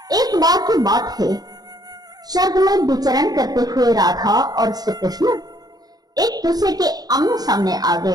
एक बार की बात है, स्वर्ग में विचरण करते हुए राधा और श्री कृष्ण एक दूसरे के आमने सामने आ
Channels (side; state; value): left; late; 0.19 ms